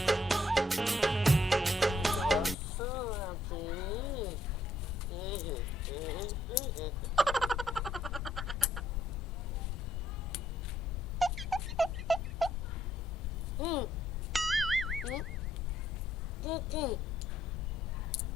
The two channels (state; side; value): normal; both; correlation 0.70